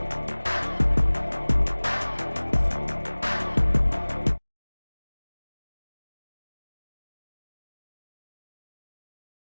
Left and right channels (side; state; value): both; inverted; correlation -1.00